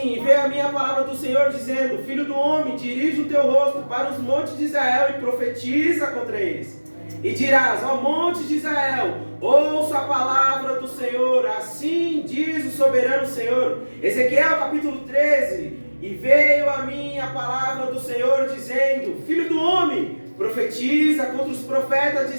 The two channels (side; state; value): both; inverted; correlation -1.00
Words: e veio a minha palavra do Senhor dizendo: filho do homem, dirige o teu rosto para os montes de Israel e profetiza contra eles. E dirás: ó monte de Israel, ouça a palavra do Senhor, assim diz o soberano Senhor. Ezequiel capítulo 13: e veio a mim a palavra do Senhor dizendo: filho do homem, profetiza contra os profetas de